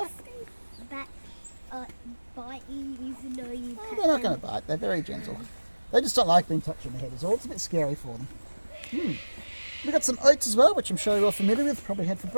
That bite you even though you Oh, pet they're not them. going to bite. They're very gentle. They just don't like being touched on the head is all. It's a bit scary for them. We've got some oats as well, which I'm sure you're all familiar with, probably had for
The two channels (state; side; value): inverted; both; correlation -1.00